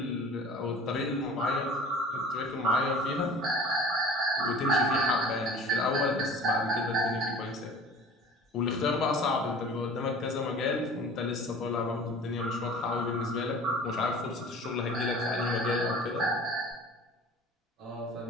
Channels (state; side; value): normal; both; correlation 0.44